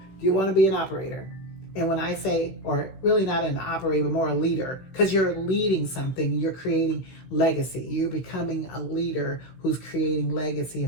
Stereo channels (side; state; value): right; late; 16 ms